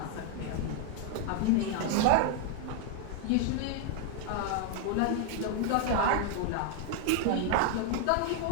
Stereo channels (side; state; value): both; different; correlation 0.00